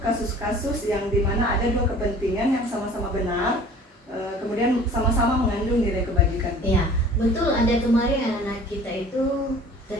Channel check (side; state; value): both; normal; correlation 0.47